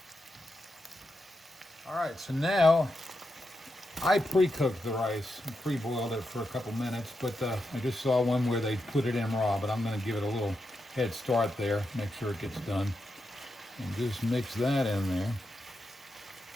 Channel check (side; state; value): both; normal; correlation 0.86